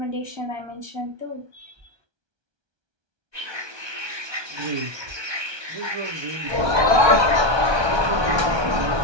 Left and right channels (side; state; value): left; late; 1.2 ms